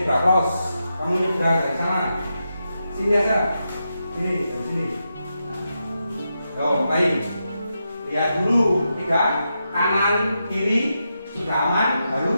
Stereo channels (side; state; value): both; inverted; correlation -0.86